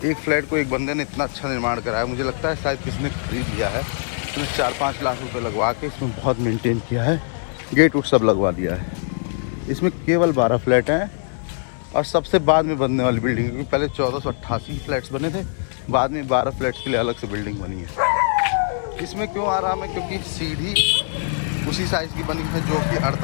फ्लैट को एक बंदे ने इतना अच्छा निर्माण कराया, मुझे लगता है शायद किसी ने खरीद लिया है। इसमें 4-5 लाख रुपए लगवा के इसमें बहुत मेंटेन किया है, गेट उट सब लगवा दिया है। इसमें केवल 12 फ्लैट हैं, और सबसे बाद में बनने वाली बिल्डिंग, क्योंकि पहले 1488 फ्लैट्स बने थे, बाद में 12 फ्लैट्स के लिए अलग से बिल्डिंग बनी है। इसमें क्यों आराम है, क्योंकि सीढ़ी उसी साइज़ की बनी है जो कि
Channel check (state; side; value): silent; right; digital silence